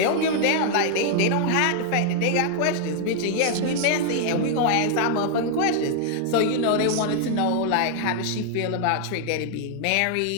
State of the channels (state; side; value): different; both; correlation 0.00